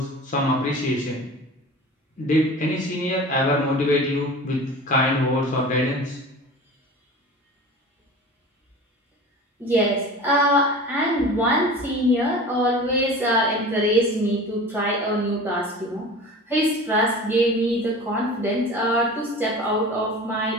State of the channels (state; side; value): normal; both; correlation 0.37